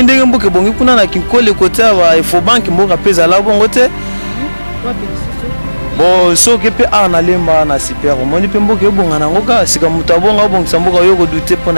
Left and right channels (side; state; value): both; inverted; correlation -1.00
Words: ndenge mboke bongi kuna na kinkole côté wa ifo bank mboka pesa la bongo te bon soki pe ana lemba na super moni pe mboke bonga na ngoka sika mutu abonga bongisa mboka yo ko douter